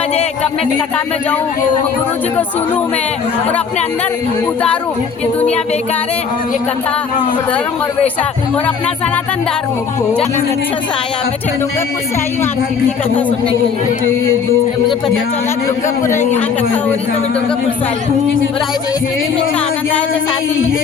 कब मैं कथा में जाऊँ, गुरु जी को सुनूं मैं और अपने अंदर उतारूं। ये दुनिया बेकार है, ये कथा धर्म और वैशाख और अपना सनातन धर्म। अच्छा से आया, मैं डूंगरपुर से आई हूँ आपकी कथा सुनने के लिए। मुझे पता चला डूंगरपुर यहाँ कथा हो रही, तो मैं डूंगरपुर से आई हूँ। और आज आनंद आया तो 7 दिन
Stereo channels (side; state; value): right; quieter; 6.1 dB